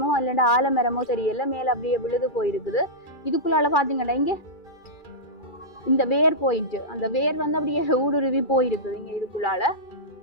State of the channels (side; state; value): right; late; 2.4 ms